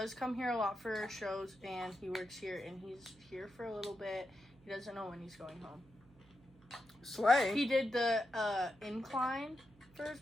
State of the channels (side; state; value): right; noise; hum, 27 dB below the sound